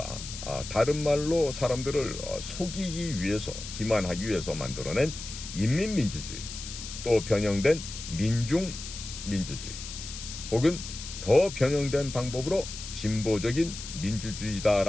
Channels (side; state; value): left; noise; hiss, 10 dB below the sound